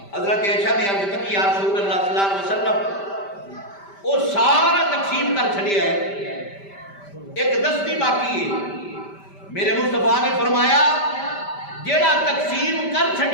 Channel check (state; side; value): late; right; 5.1 ms